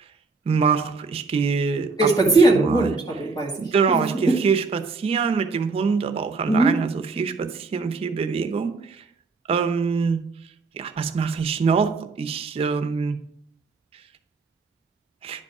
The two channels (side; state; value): left; quieter; 4.1 dB